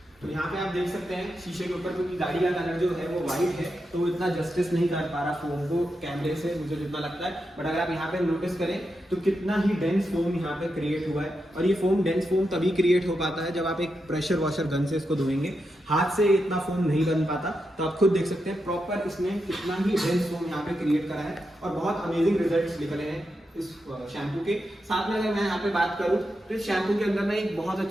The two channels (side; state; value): both; normal; correlation 0.86